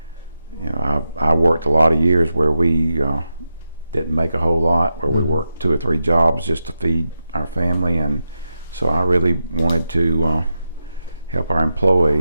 worked a lot of years where we didn't make a whole lot, where we worked 2 or 3 jobs just to feed our family, and so I really wanted to help our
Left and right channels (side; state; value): both; inverted; correlation -0.89